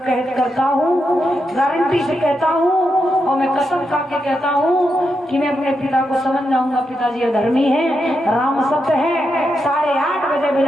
करता हूँ, गारंटी से कहता हूँ और मैं कसम खा के कहता हूँ कि मैं अपने पिता को समझ जाऊंगा। पिताजी अधर्मी है, राम सत्य है। 8:30 बजे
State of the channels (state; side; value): normal; both; correlation 0.84